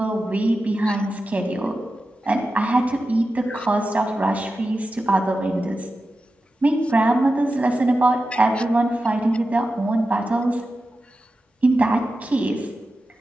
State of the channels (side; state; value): both; normal; correlation 0.92